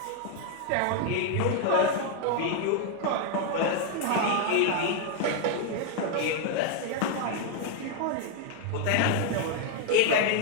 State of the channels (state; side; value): different; both; correlation 0.00